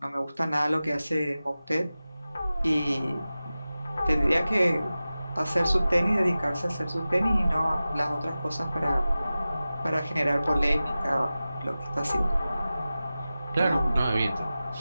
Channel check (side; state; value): both; inverted; correlation -0.95